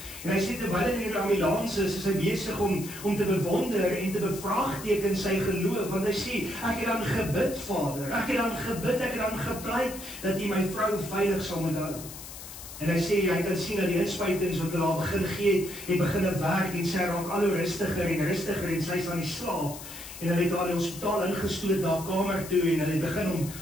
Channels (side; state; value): left; noise; hiss, 13 dB below the sound